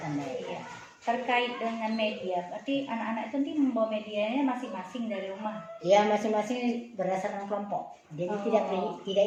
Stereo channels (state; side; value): identical; both; correlation 1.00